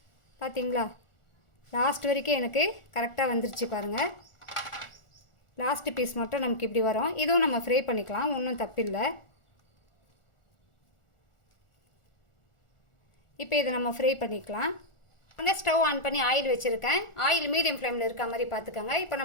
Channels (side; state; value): right; late; 1.4 ms